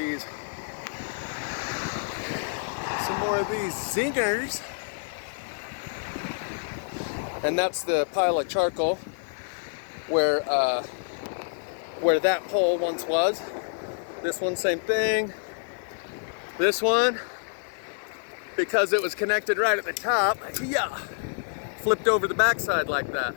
Some more of these zingers. And that's the pile of charcoal where that pole once was. This one, same thing. This one, because it was connected right at the top, yeah, flipped over the backside like that.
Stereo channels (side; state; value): right; silent; digital silence